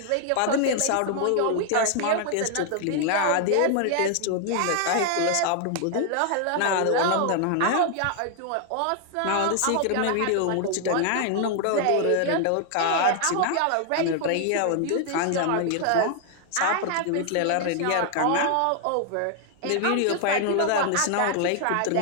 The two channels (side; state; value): both; different; correlation 0.00